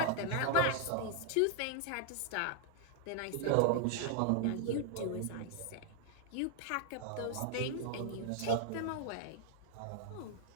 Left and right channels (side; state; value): both; different; correlation 0.00